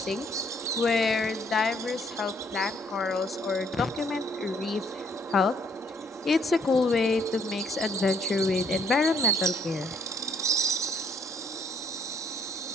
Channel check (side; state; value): both; normal; correlation 0.67